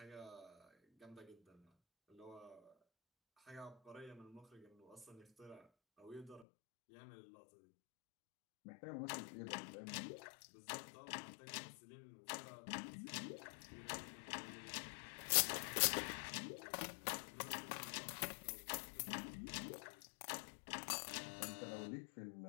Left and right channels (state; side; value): drops out; right; at 6.5 s